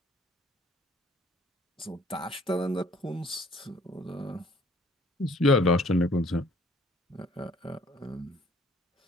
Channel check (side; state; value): both; normal; correlation 0.58